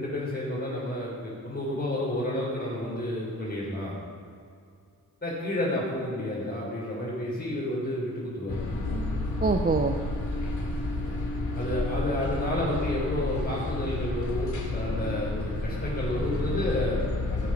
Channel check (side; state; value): both; normal; correlation 0.51